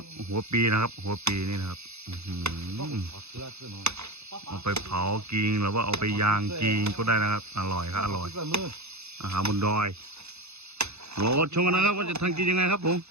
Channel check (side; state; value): left; late; 0.80 ms